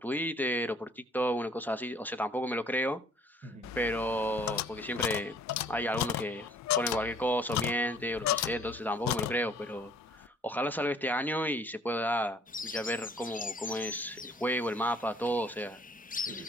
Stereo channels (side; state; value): both; normal; correlation 0.56